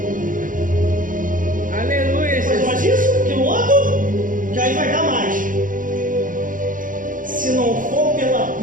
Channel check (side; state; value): left; late; 0.39 ms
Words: Aleluia, Faz mais isso, aquilo outro, que aí vai dar mais. Se não for pela